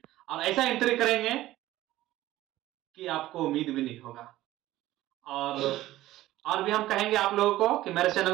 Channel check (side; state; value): left; quieter; 15.6 dB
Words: और ऐसा एंट्री करेंगे कि आपको उम्मीद भी नहीं होगा। और भी हम कहेंगे आप लोगों को कि मेरे